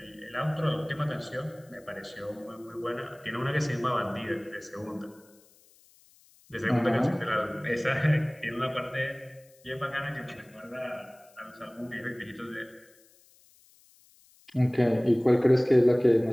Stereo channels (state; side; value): noise; left; hiss, 29 dB below the sound